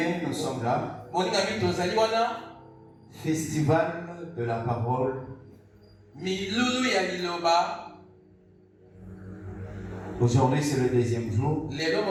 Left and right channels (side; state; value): both; identical; correlation 1.00